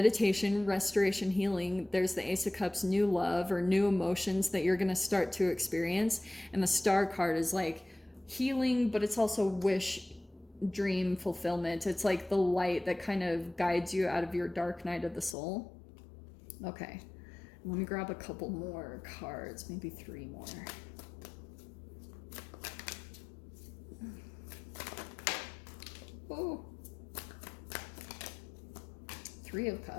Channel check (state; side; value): drops out; right; at 15.4 s